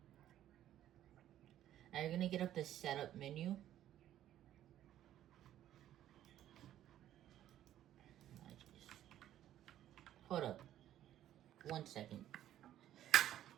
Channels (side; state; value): left; quieter; 12.1 dB